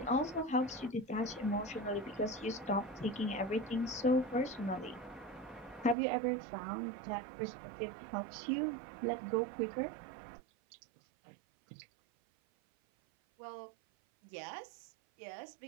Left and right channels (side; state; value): left; drops out; at 6.0 s